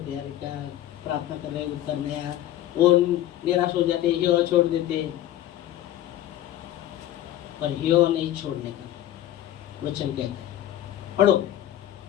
हैं, क्या प्रार्थना कर रहे उत्तर नहीं आया, वो निराश हो जाते, हियो छोड़ देते। पर हियो नहीं छोड़ने का वचन कहता है। पढ़ो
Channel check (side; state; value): right; quieter; 13.1 dB